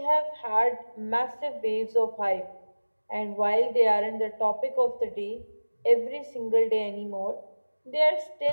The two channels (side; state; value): both; inverted; correlation -1.00